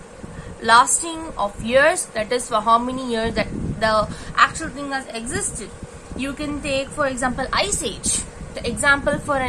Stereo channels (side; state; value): both; identical; correlation 1.00